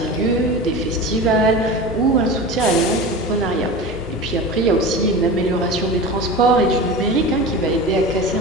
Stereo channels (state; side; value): normal; both; correlation 0.30